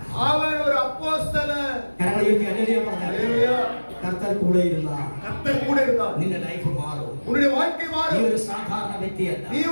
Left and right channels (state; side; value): inverted; both; correlation -1.00